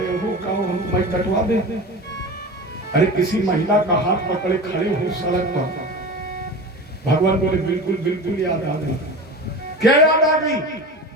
हो, कहो हम मैं कटवा दे। अरे किसी महिला का हाथ पकड़े खड़े हो सड़क पर। भगवान बोले बिल्कुल बिल्कुल याद आ गई। क्या याद आ गई?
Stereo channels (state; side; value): normal; both; correlation 0.31